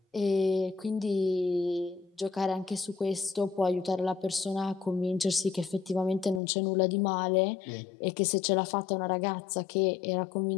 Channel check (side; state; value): right; drops out; at 6.4 s